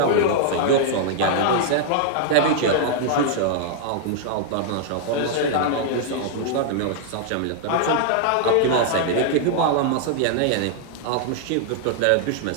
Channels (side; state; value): both; different; correlation -0.01